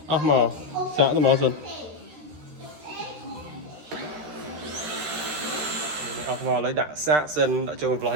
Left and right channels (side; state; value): left; late; 13 ms